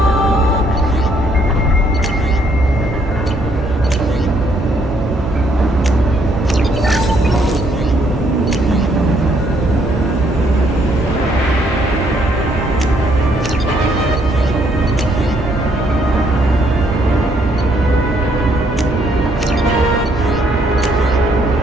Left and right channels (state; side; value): normal; both; correlation 0.69